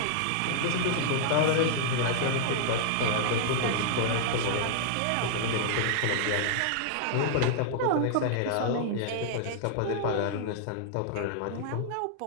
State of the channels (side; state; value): both; different; correlation -0.01